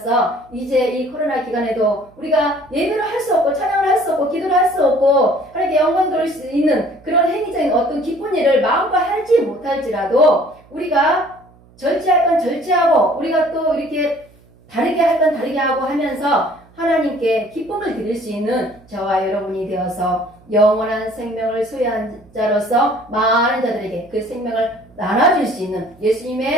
이제 이 코로나 기간에도 우리가 예배를 할 수 없고 찬양을 할 수 없고 기도를 할 수 없고 하나님께 영광 돌릴 수 있는 그런 행위적인 어떤 기쁜 일을 마음껏 하지 못할지라도 우리가 절제할 건 절제하고 우리가 또 이렇게 다르게 할 건 다르게 하고 하면서 하나님께 기쁨을 드릴 수 있는 저와 여러분이 되어서 영원한 생명을 소유한 자로서 많은 자들에게 그 생명을 나눠줄 수 있는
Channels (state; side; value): noise; right; hum, 28 dB below the sound